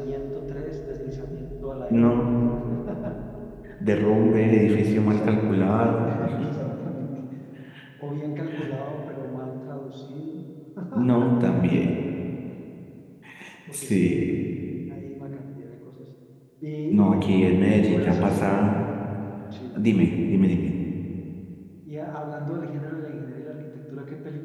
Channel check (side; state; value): both; identical; correlation 1.00